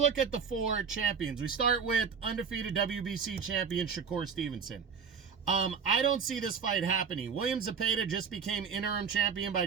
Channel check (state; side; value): quieter; left; 6.2 dB